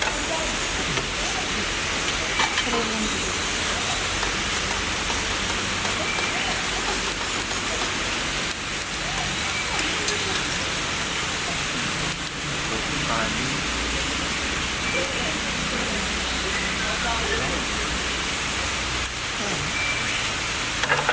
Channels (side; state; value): both; identical; correlation 1.00